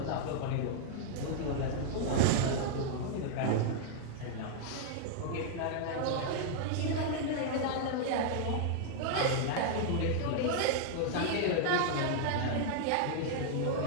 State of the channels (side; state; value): both; different; correlation -0.01